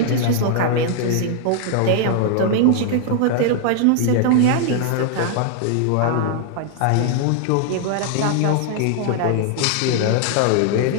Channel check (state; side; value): different; both; correlation 0.00